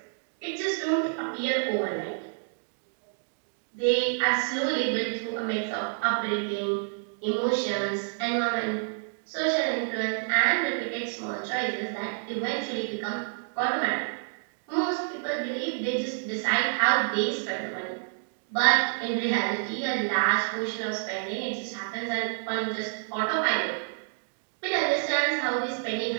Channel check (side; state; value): left; silent; digital silence